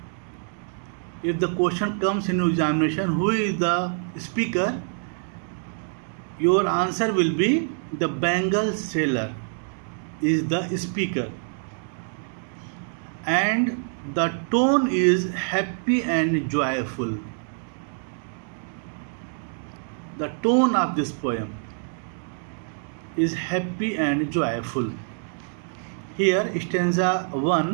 If the question comes in examination, who is the speaker? Your answer will be the Bengal sailor is the speaker. And the tone is happy and joyful. The tone of this poem is happy and joyful. Here, stanza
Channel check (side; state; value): left; silent; digital silence